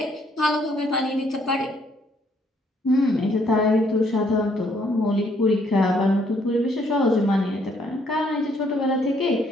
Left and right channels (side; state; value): both; normal; correlation 0.68